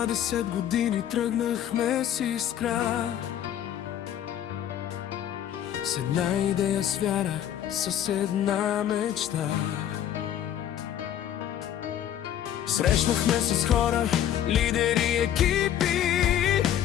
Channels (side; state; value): right; quieter; 10.7 dB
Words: 20 години тръгнахме с искра, с една идея, с вяра, с една мечта. Срещнахме с хора, лидери, екипи,